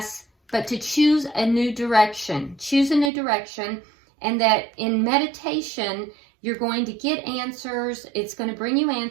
but to choose a new direction. Choose a new direction, and that in meditation, you're going to get answers. It's going to bring you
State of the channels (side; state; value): left; drops out; at 3.1 s